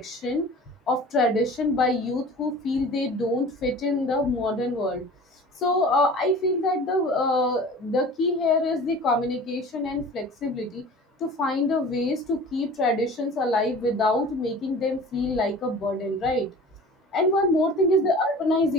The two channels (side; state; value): both; normal; correlation 0.41